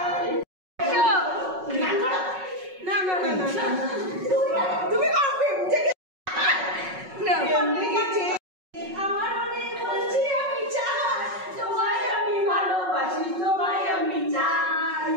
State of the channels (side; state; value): left; late; 5.4 ms